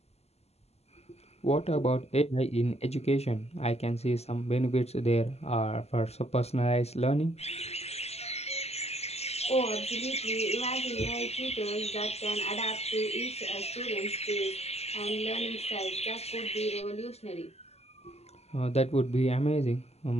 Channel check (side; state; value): right; late; 0.30 ms